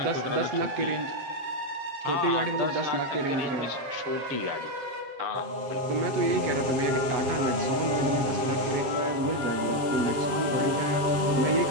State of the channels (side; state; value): left; late; 7.3 ms